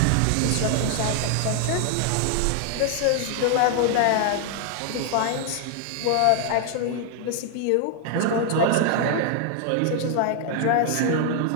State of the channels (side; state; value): both; different; correlation 0.00